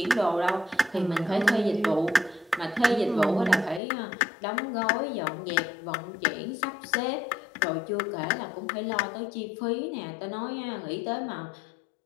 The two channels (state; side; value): drops out; right; at 3.8 s